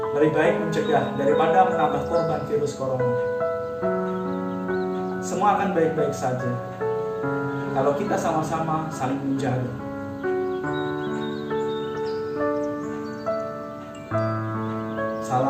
Lebih baik mencegah daripada menambah korban virus corona. Semua akan baik-baik saja kalau kita sama-sama saling menjaga.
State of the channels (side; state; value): both; identical; correlation 1.00